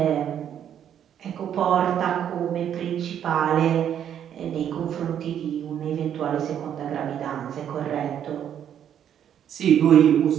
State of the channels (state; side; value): quieter; left; 9.5 dB